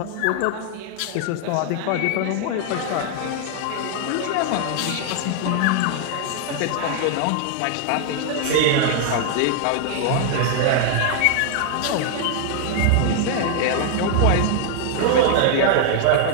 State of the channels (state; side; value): different; both; correlation 0.00